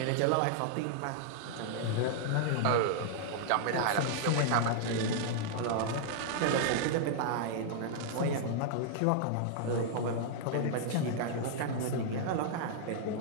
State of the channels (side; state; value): both; different; correlation -0.01